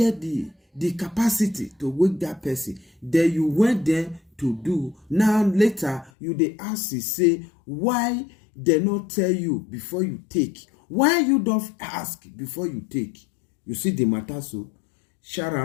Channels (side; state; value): right; drops out; at 6.1 s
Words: the capacity to wake that person. Then you went there to do. Now later you they ask you say why they not tell you before you take. Why you don't ask before you take? You see the matter. So shout